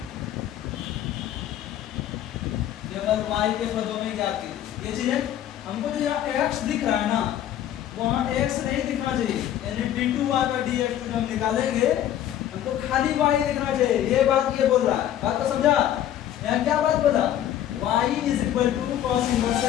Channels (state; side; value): quieter; right; 11.4 dB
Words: केवल y के पदों में ज्ञात कीजिए। ये चीज है, हमको जो यहाँ x दिख रहा है ना वहाँ x नहीं दिखना चाहिए, यानी d2y by dx2 हम निकालेंगे हमको खाली y दिखना चाहिए। ये बात ये बोल रहा है, बात को समझा। यहाँ क्या बात बोला y is equal to cos inverse